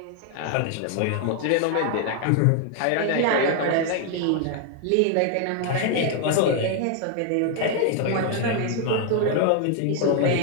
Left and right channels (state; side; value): different; both; correlation 0.00